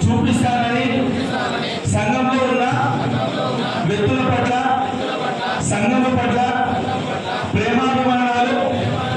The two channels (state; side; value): identical; both; correlation 1.00